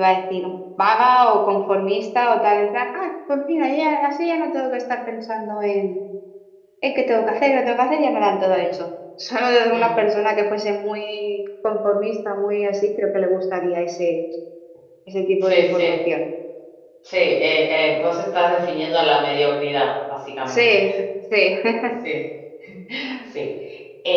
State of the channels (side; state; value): both; identical; correlation 1.00